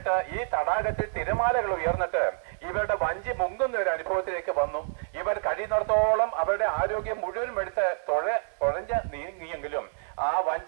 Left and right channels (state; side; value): silent; left; digital silence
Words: ഈ തടാകത്തിൽ തിരമാലകൾ ഉയർന്നിട്ട് ഇവരുടെ വഞ്ചി മുങ്ങുന്ന ഒരു അനുഭവത്തിലേക്ക് വന്നു. ഇവർ കഴിയുന്നിടത്തോളം അവരുടെ ആരോഗ്യം മുഴുവനും എടുത്ത് തുഴഞ്ഞ് നീങ്ങിയെങ്കിലും ആ